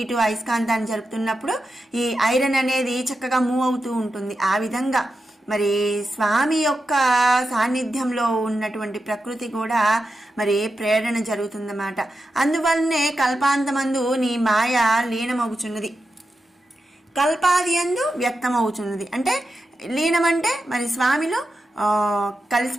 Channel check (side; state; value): both; normal; correlation 0.89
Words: ఇటు అయస్కాంతాన్ని జరుపుతున్నప్పుడు ఈ ఐరన్ అనేది చక్కగా మూవ్ అవుతూ ఉంటుంది. ఆ విధంగా మరి స్వామి యొక్క సాన్నిధ్యంలో ఉన్నటువంటి ప్రకృతి కూడా మరి ప్రేరణ జరుగుతుందన్నమాట. అందువల్లనే కల్పాంతమందు నీ మాయ లీనమవుచున్నది, కల్పాది యందు వ్యక్తమవుతున్నది. అంటే లీనం అంటే మరి స్వామిలో